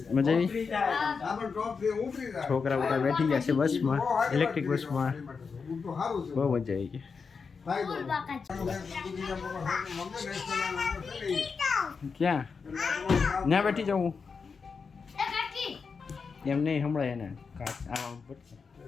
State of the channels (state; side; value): quieter; right; 5.3 dB